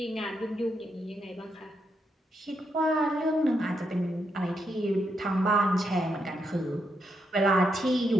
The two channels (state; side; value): normal; both; correlation 0.81